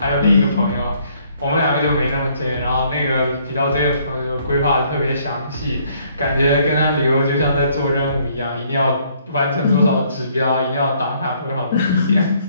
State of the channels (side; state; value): both; inverted; correlation -0.65